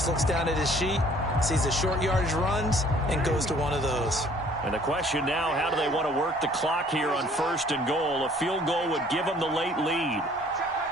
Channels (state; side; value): normal; both; correlation 0.56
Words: looks down at his sheet, sees the short yardage runs, and goes to one of those. And the question now, how do they want to work the clock here on 1st and goal? A field goal would give them the late lead.